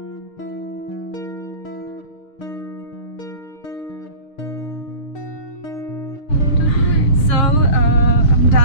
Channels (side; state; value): right; late; 6.7 ms